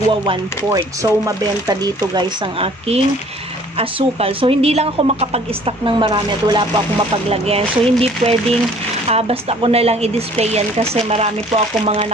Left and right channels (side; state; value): both; normal; correlation 0.54